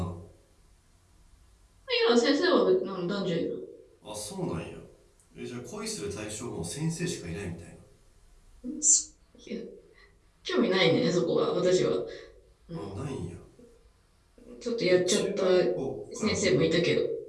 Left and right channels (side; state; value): both; identical; correlation 1.00